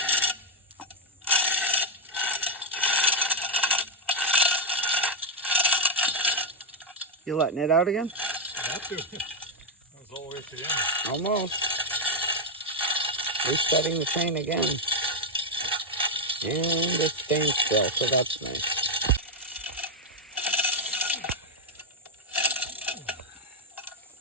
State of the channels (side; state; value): both; normal; correlation 0.03